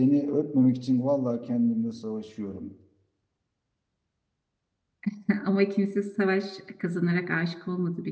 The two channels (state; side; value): identical; both; correlation 1.00